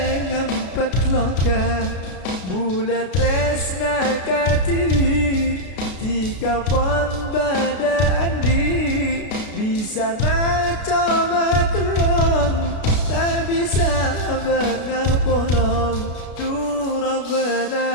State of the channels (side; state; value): right; late; 33 ms